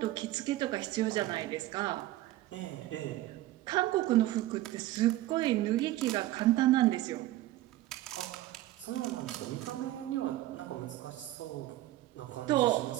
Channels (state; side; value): quieter; left; 15.9 dB